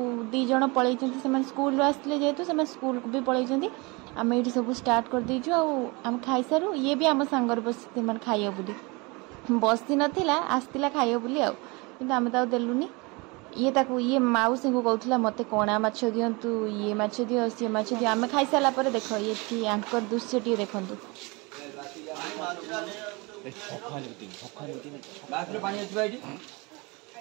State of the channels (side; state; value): left; quieter; 26.9 dB